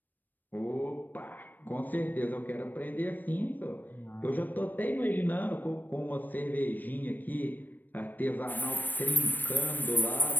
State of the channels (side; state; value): right; late; 0.089 ms